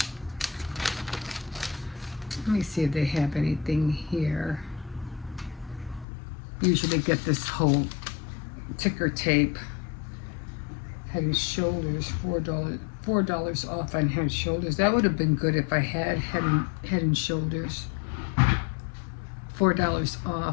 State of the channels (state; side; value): drops out; right; at 6.1 s